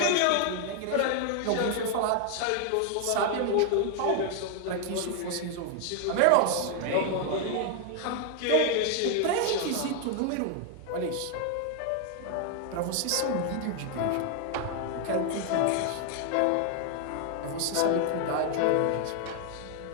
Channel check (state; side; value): different; both; correlation 0.00